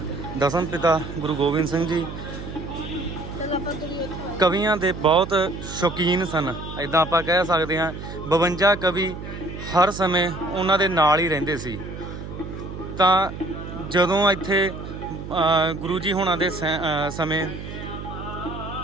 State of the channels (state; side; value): noise; right; hum, 10 dB below the sound